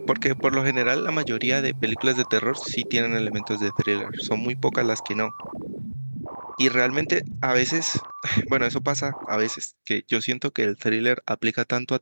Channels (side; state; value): both; inverted; correlation -1.00